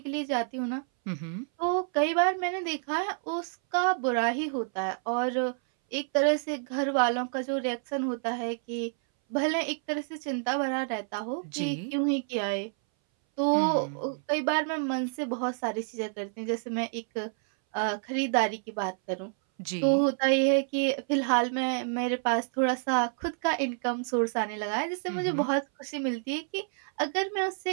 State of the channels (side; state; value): left; silent; 59 dB below the other